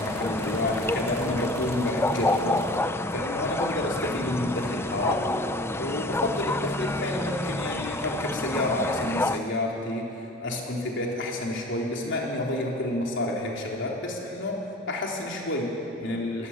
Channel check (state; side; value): normal; both; correlation 0.42